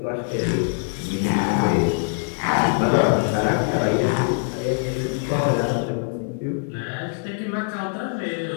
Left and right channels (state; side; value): silent; right; 59 dB below the other